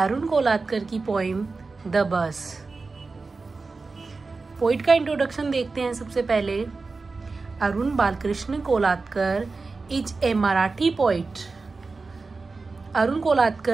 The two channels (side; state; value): left; quieter; 4.0 dB